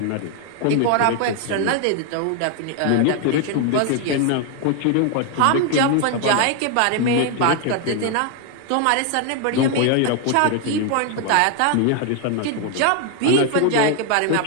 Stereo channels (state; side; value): different; both; correlation 0.00